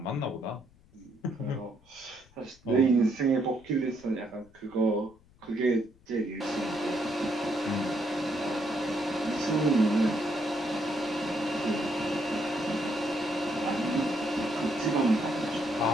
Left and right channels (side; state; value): left; noise; rumble, 28 dB below the sound